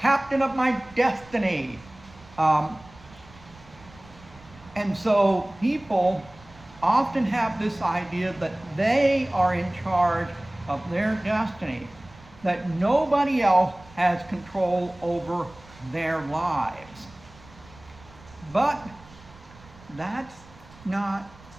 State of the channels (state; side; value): noise; right; rumble, 23 dB below the sound